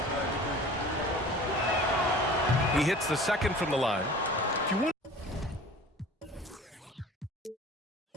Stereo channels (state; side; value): normal; both; correlation 0.43